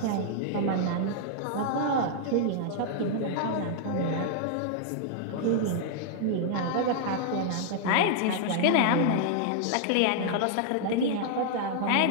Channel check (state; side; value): different; both; correlation -0.01